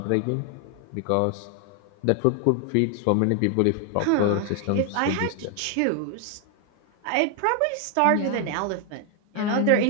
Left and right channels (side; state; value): both; different; correlation 0.00